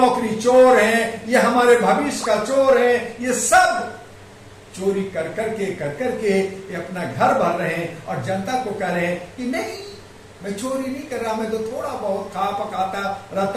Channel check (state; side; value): identical; both; correlation 1.00